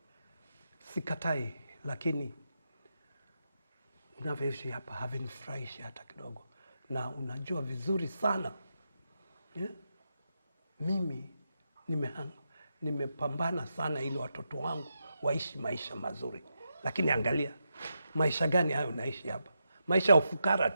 Sikatai, lakini unavyoishi hapa havinifurahishi hata kidogo. Na unajua vizuri sana mimi nimepambana sana ili watoto wangu waishi maisha mazuri. Lakini angalia, maisha gani hayo unaishi hapa? Maisha ya ufukara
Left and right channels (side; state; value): both; inverted; correlation -0.85